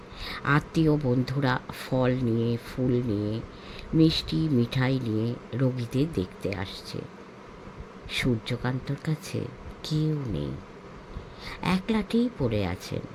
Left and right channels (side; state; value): both; identical; correlation 1.00